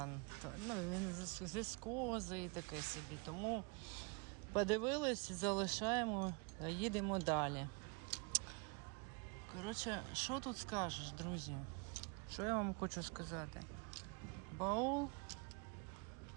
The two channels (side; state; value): left; quieter; 30.6 dB